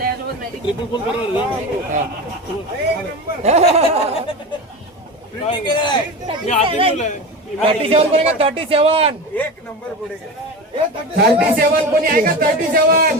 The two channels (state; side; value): normal; both; correlation 0.26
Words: $37 कोणी का 37? एक नंबर पुढे. 37 कोणी आहे का